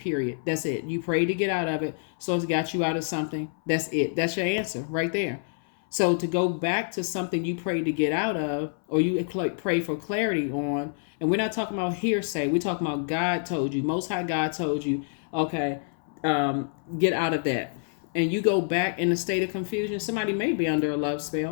That's it. You prayed to get out of it, so it's got you out of something. That's it. That's your answer right there. So to go back to something you prayed to get out of, or you pray for clarity on, and we're not talking about hearsay. We're talking about God told you, Most High God told you, okay, get out of that. And you go back in a state of confusion. Somebody may be under a love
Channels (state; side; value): silent; right; 60 dB below the other